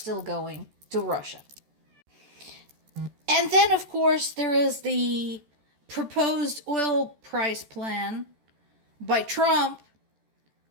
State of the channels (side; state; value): left; late; 14 ms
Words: going to Russia. And then, of course, there is the proposed oil price plan by Trump,